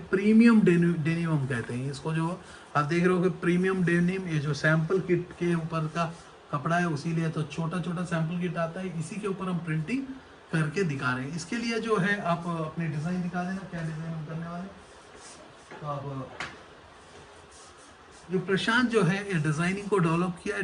प्रीमियम डेनिम हम कहते हैं इसको। जो आप देख रहे हो कि प्रीमियम डेनिम, ये जो सैंपल किट के ऊपर का कपड़ा है, उसीलिए तो छोटा छोटा सैंपल किट आता है, इसी के ऊपर हम प्रिंटिंग करके दिखा रहे हैं। इसके लिए जो है आप अपनी डिज़ाइन दिखा देना, क्या डिज़ाइन हम करने वाले। तो आप जो प्रशांत जो है ये डिज़ाइनिंग को डेवलप किया है।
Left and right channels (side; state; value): both; identical; correlation 1.00